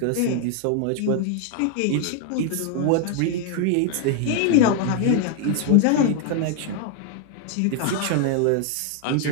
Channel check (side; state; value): both; different; correlation 0.00